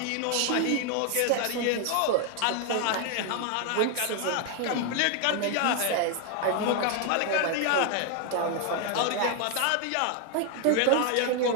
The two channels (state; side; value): different; both; correlation 0.01